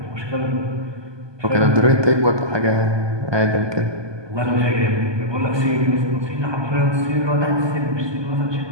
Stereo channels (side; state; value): left; late; 1.2 ms